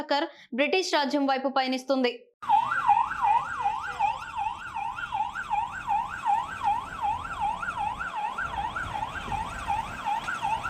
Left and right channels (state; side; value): identical; both; correlation 1.00